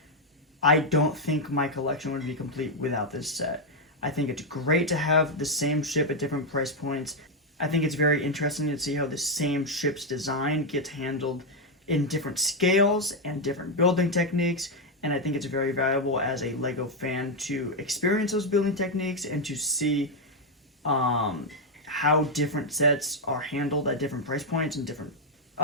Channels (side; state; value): both; normal; correlation 0.02